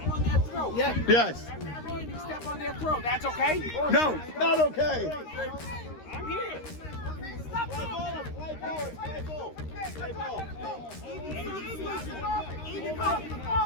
Yeah. Yes. Step on their throat. That's okay? No, not okay. I'm here.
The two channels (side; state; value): right; late; 13 ms